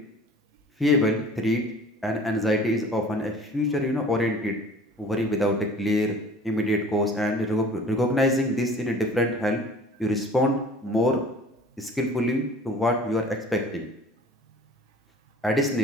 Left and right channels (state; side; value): normal; both; correlation 0.46